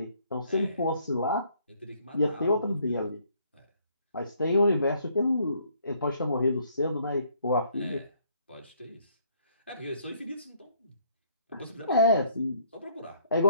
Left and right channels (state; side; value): inverted; both; correlation -0.65